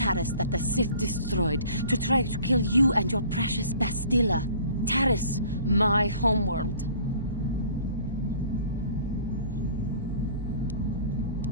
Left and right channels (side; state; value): both; inverted; correlation -0.49